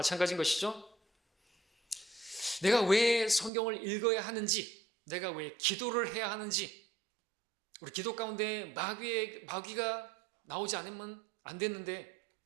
것이죠. 내가 왜 성경을 읽어야 하는지, 내가 왜 기도를 해야 하는지, 우리 기도 가운데 마귀가 나오지 않으면 안 됐는데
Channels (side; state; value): left; drops out; at 3.5 s